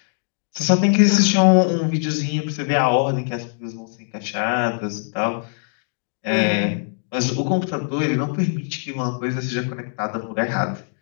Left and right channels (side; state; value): right; silent; digital silence